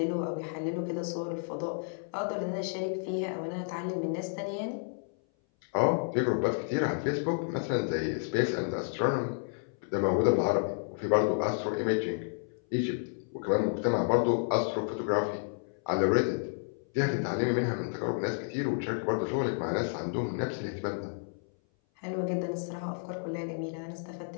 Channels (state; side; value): silent; right; 57 dB below the other